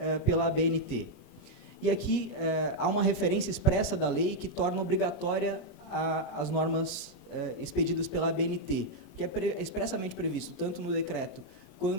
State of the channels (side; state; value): right; late; 36 ms